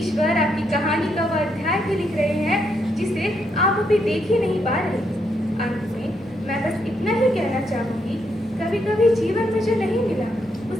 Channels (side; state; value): both; normal; correlation 0.77